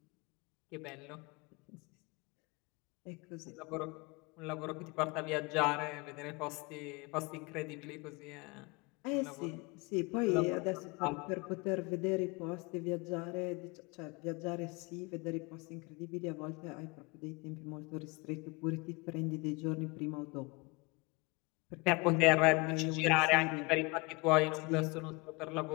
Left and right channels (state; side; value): quieter; right; 26.7 dB